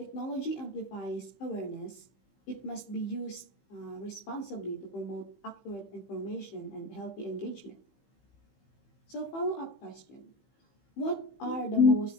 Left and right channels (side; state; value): right; late; 15 ms